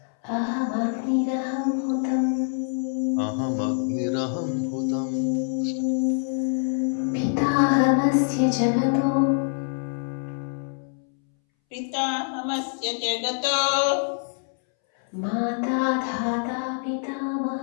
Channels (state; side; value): silent; right; 62 dB below the other